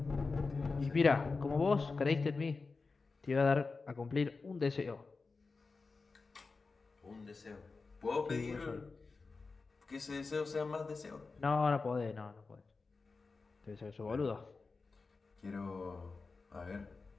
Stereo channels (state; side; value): quieter; right; 4.1 dB